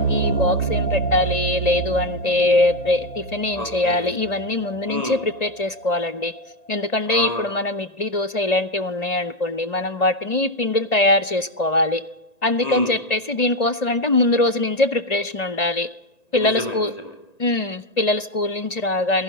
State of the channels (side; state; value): right; late; 1.9 ms